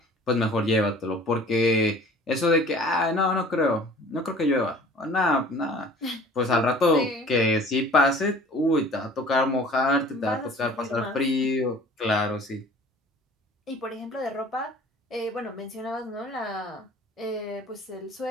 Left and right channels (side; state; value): both; normal; correlation 0.47